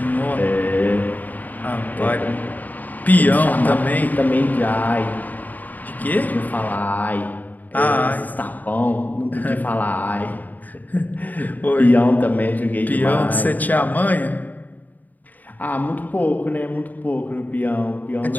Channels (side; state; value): right; late; 0.083 ms